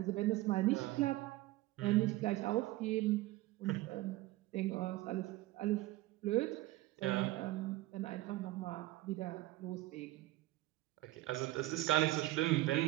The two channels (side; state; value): left; quieter; 17.6 dB